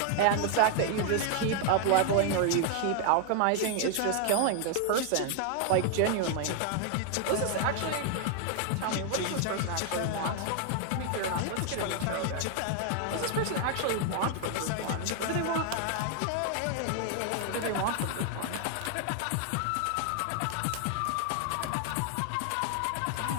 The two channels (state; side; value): different; both; correlation 0.00